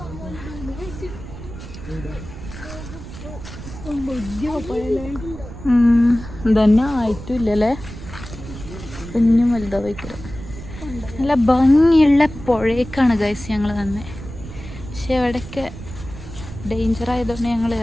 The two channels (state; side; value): noise; right; rumble, 12 dB below the sound